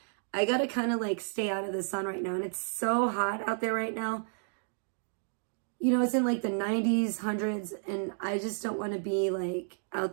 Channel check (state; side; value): silent; left; digital silence